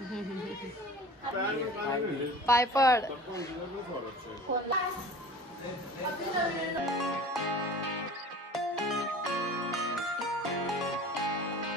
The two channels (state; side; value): normal; both; correlation 0.41